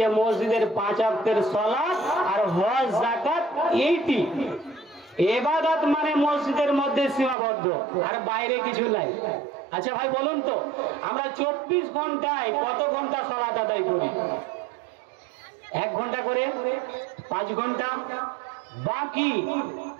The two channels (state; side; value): drops out; left; at 7.4 s